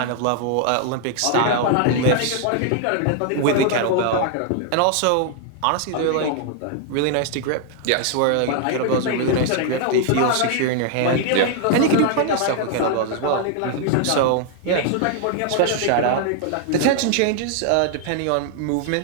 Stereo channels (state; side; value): different; both; correlation 0.00